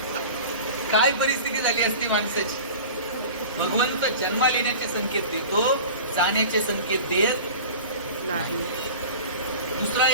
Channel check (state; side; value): inverted; both; correlation -0.36